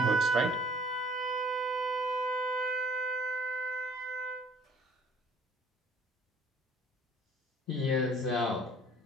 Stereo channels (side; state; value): both; normal; correlation 0.55